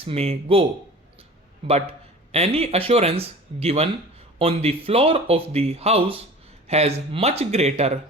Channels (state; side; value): normal; both; correlation 0.40